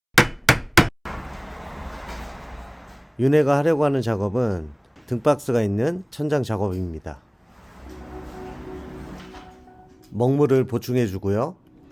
윤회가 하려고 하는 작업은 등박스가 있는 천장 작업입니다. 먹물을 보충해 주고요.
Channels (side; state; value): both; identical; correlation 1.00